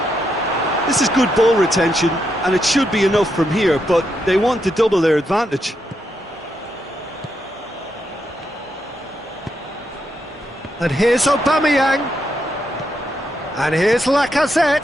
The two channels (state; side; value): normal; both; correlation 0.81